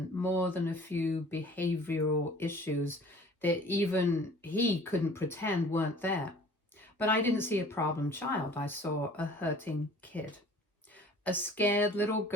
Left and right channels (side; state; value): both; normal; correlation 0.48